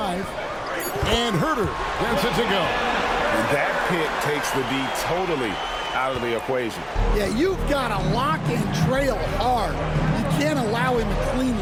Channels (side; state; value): both; identical; correlation 1.00